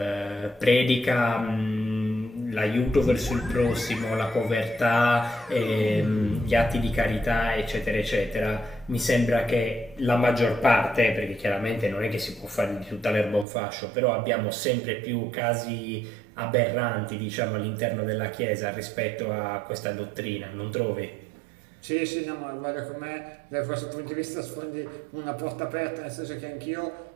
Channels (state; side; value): drops out; left; at 13.5 s